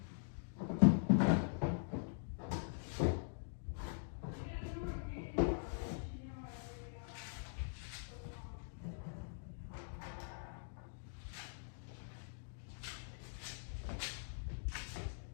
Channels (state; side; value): silent; right; digital silence